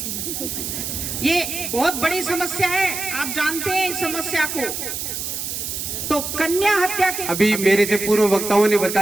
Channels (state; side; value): noise; right; hiss, 5 dB below the sound